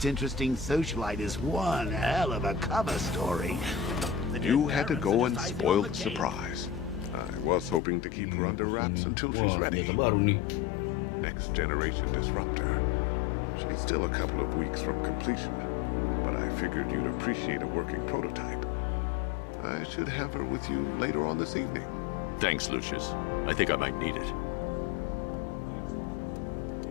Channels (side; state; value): right; drops out; at 7.8 s